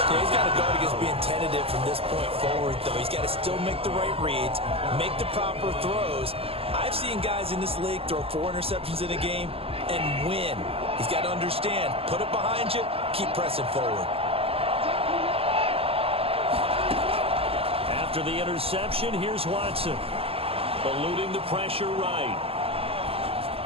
Yeah, he's got to guard against being tentative from this point forward, though. He's got to still make the right reads, make the proper throws. I've seen guys in this league throw 4 interceptions in a game and win. He's got to understand, put it behind you, keep pressing forward. After the interception, here's Watson. Eluding the pressure right.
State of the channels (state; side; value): late; left; 0.28 ms